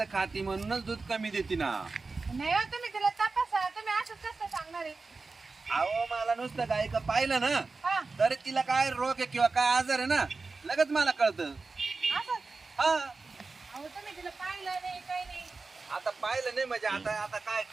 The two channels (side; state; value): left; quieter; 4.0 dB